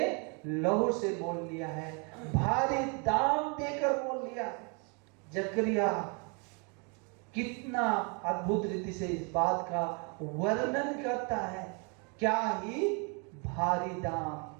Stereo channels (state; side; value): quieter; left; 34.4 dB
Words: लहू से मोल लिया है, भारी दाम देकर मोल लिया है। जकरिया कितना अद्भुत रीति से इस बात का वर्णन करता है। क्या ही भारी दाम